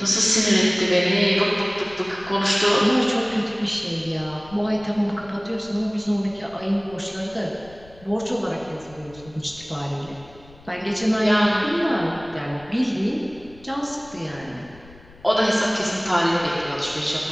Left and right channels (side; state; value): left; noise; rumble, 23 dB below the sound